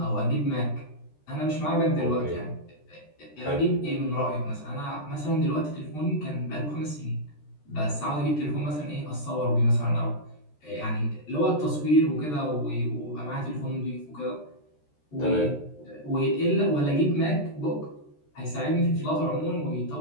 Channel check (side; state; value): right; late; 13 ms